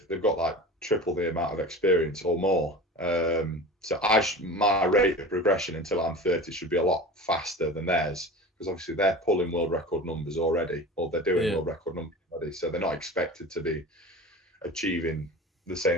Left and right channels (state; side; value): normal; both; correlation 0.34